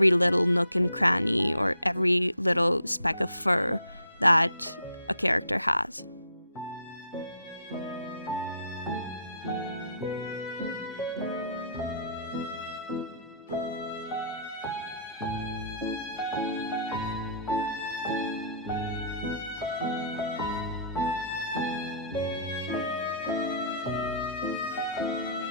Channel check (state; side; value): inverted; both; correlation -0.59